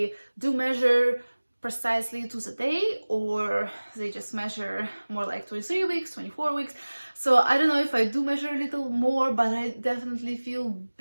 do measure precisely to the day, or they just measure more like 23 weeks, 24 weeks. So I don't know if I do measure a little more, but I definitely feel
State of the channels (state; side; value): inverted; both; correlation -1.00